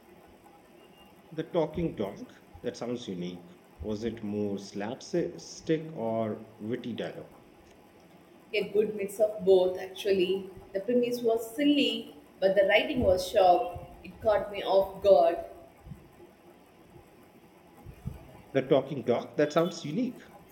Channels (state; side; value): identical; both; correlation 1.00